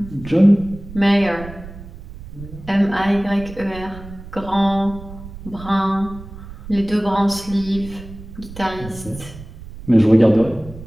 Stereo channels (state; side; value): noise; right; rumble, 15 dB below the sound